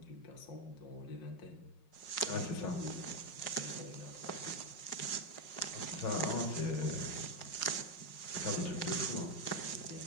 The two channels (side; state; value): right; late; 5.5 ms